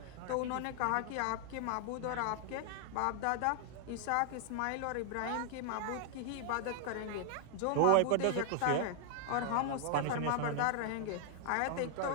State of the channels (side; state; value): both; different; correlation 0.00